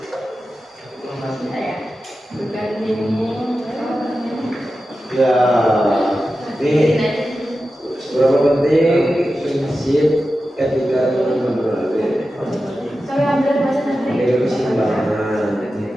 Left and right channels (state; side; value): normal; both; correlation 0.92